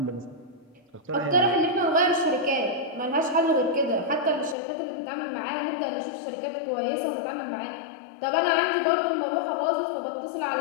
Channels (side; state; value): right; drops out; at 4.5 s